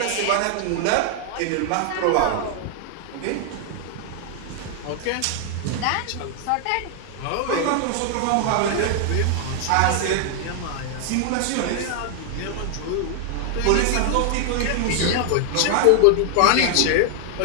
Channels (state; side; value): different; both; correlation 0.00